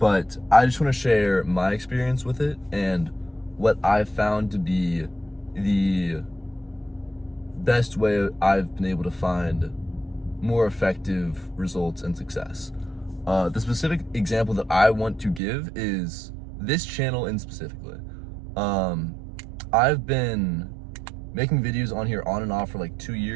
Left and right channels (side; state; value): left; drops out; at 15.4 s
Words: I just want to share my experience with it and what I've found to be the best way I've been able to find more effective results and success. The specific example that I want to give is this channel in specifically. Um, I've been making videos on here on and off for like 2